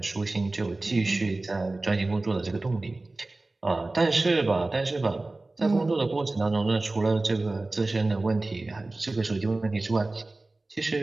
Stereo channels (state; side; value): quieter; left; 3.1 dB